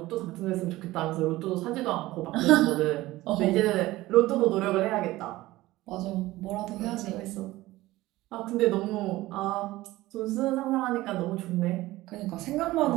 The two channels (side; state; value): left; quieter; 17.7 dB